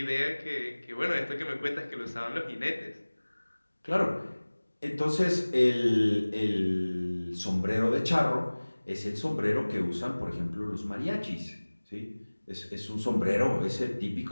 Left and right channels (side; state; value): both; inverted; correlation -1.00